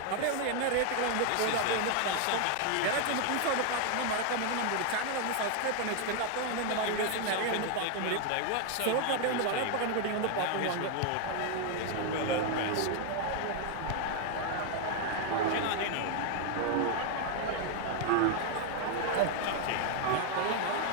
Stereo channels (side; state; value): both; different; correlation 0.00